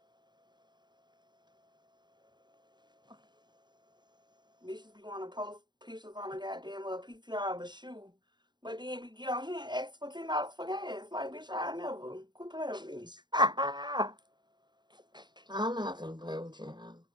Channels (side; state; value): left; late; 0.21 ms